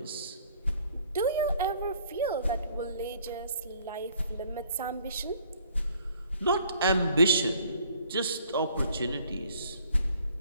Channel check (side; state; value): both; inverted; correlation -0.60